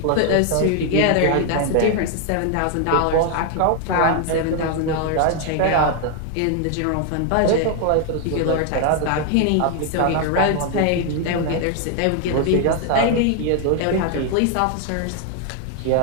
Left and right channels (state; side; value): different; both; correlation 0.00